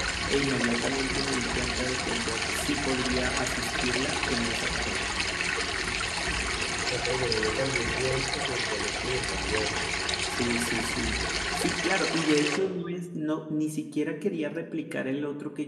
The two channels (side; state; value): both; identical; correlation 1.00